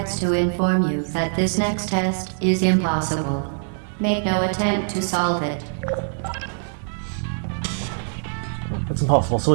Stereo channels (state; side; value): silent; left; digital silence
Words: to inform you that this next test is impossible. Make no attempt to solve it. It's impossible, so